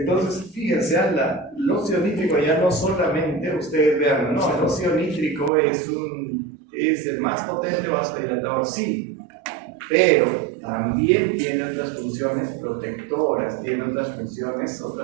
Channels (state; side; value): drops out; left; at 5.5 s